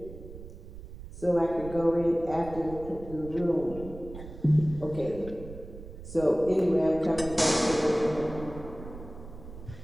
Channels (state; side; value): noise; right; rumble, 13 dB below the sound